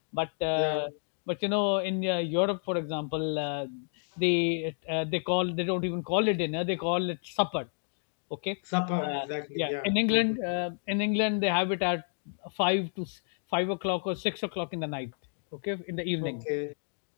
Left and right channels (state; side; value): silent; right; 56 dB below the other